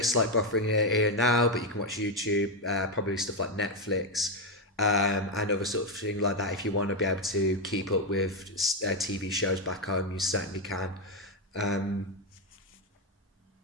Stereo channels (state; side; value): normal; both; correlation 0.06